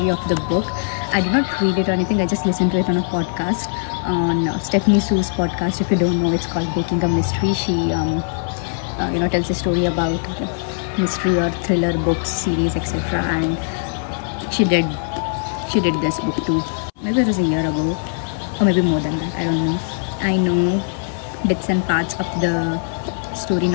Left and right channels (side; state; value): right; silent; 62 dB below the other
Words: of the book. I did not read it or anything. I just listened to it on a podcast, on Stephanie Sue's podcast. If you don't know, it's called Baking a Mystery. She tells a story about mystery or thriller books, series, etc. And she did this book too. Maybe it was a year ago, or maybe more than that. I don't know. I know bits and parts of the story,